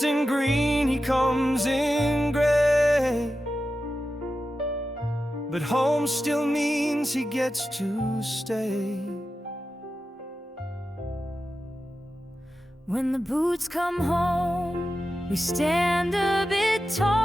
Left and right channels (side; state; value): both; normal; correlation 0.92